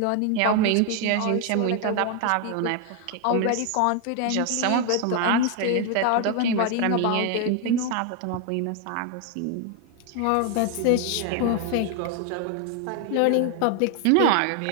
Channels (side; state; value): both; different; correlation 0.00